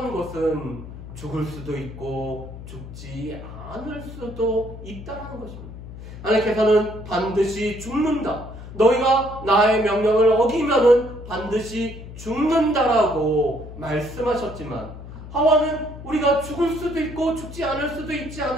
것은 죽을 수도 있고 죽지 않을 수도 있다는 것입니다. 하나님께서는 반드시 죽는다. 너희가 나의 명령을 어기면은 반드시 죽는다라고 말씀하셨지만 하와는 우리가 죽을 수도 있고 죽지 않을 수도 있지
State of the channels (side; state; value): left; noise; hum, 13 dB below the sound